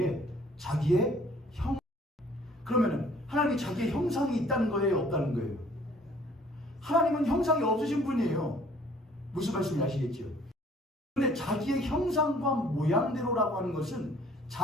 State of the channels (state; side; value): normal; both; correlation 0.57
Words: 자기의 그러면은 하나님이 자기의 형상이 있다는 거예요, 없다는 거예요? 하나님은 형상이 없으신 분이에요. 무슨 말씀인지 아시겠죠? 그런데 자기의 형상과 모양대로라고 하는 것은